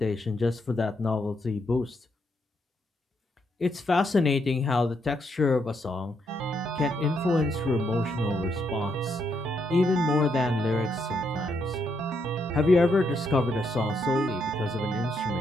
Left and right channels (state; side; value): normal; both; correlation 0.78